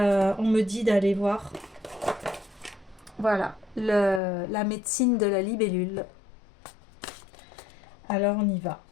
on me dit d'aller voir. Voilà, la médecine de la libellule. Alors on y va.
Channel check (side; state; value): right; drops out; at 4.2 s